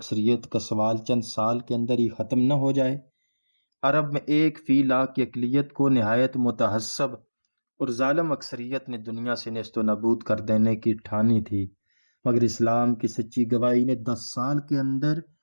کا سوال چند سال کے اندر ہی ختم نہ ہو جائے؟ عرب میں 1/100000 کی اقلیت کو نہایت متعصب اور ظالم اکثریت نے دنیا سے نیست و نابود کر دینے کی ٹھانی تھی، مگر اسلام کی سچی گواہی نے 10 سال کے اندر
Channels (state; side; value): inverted; both; correlation -1.00